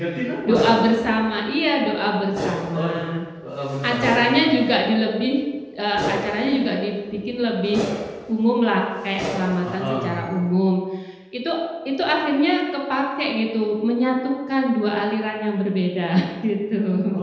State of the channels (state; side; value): identical; both; correlation 1.00